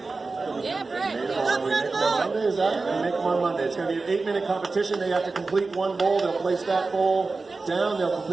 Yeah, Brett. We make them on Monday, is that? We make them on Monday. It's going to be an 8-minute competition. They have to complete one bowl. They'll place that bowl down. They'll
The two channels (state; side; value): quieter; left; 3.9 dB